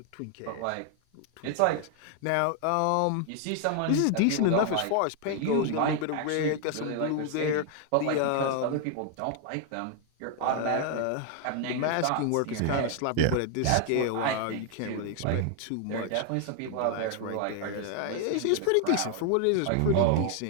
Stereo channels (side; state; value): both; different; correlation 0.00